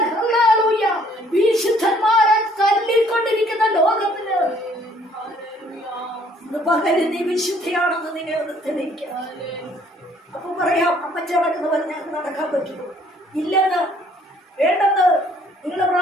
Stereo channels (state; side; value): normal; both; correlation 0.60